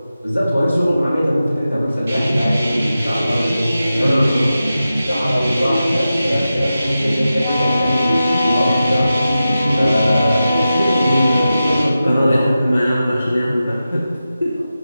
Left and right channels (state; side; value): inverted; both; correlation -0.93